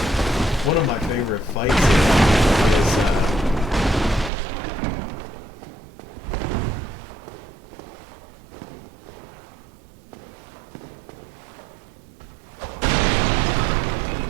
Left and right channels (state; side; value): drops out; left; at 4.3 s